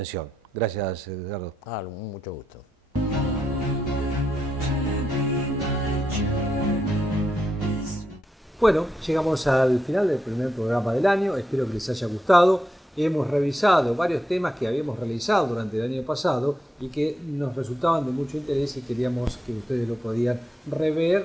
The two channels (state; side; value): normal; both; correlation 0.84